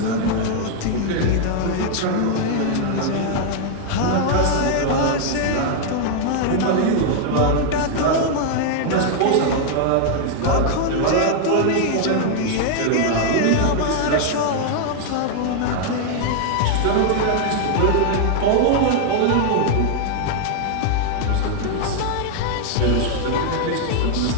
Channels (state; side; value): different; both; correlation 0.00